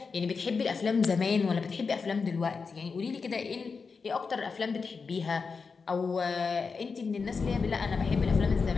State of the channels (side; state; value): right; quieter; 5.0 dB